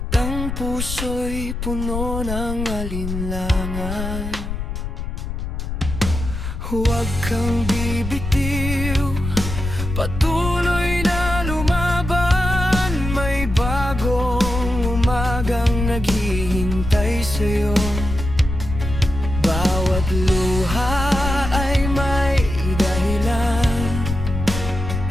ang puso'y puno ng alinlangan. Huwag kang bibitiw, patuloy na lumaban. May bagong umagang naghihintay sa'yo. Bawat luha ay may dahilan,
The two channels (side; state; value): left; noise; rumble, 5 dB below the sound